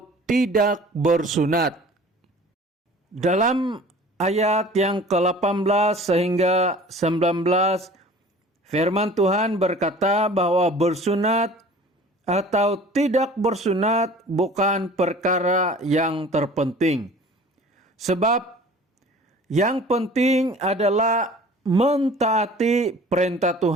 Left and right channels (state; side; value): normal; both; correlation 0.46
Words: tidak bersunat. Dalam ayat yang ke-18 sehingga 19, firman Tuhan berkata bahwa bersunat atau tidak bersunat bukan perkara yang terpenting. Sebab yang penting adalah mentaati perintah